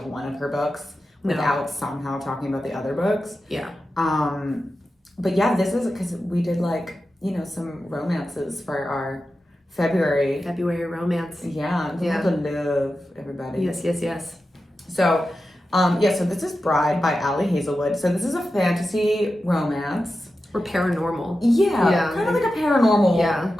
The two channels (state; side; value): normal; both; correlation 0.92